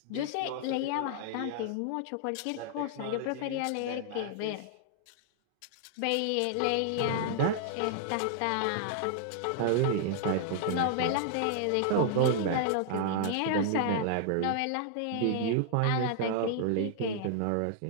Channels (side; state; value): both; different; correlation -0.01